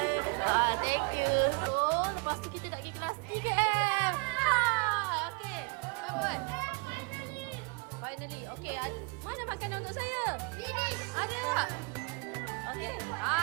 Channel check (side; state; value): left; quieter; 31.0 dB